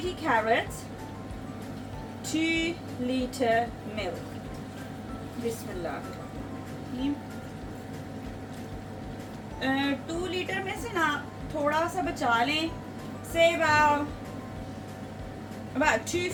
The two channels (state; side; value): identical; both; correlation 1.00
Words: carrots, 2 liter milk. Bismillah. 2 litre में से ना थोड़ा सा बचा लें, say about